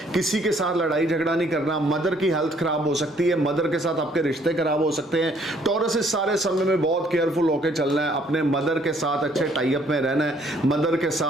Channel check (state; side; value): normal; both; correlation 0.64